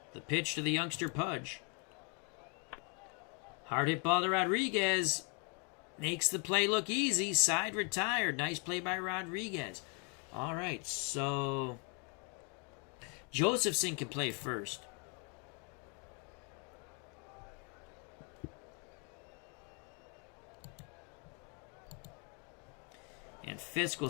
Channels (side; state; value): right; quieter; 36.3 dB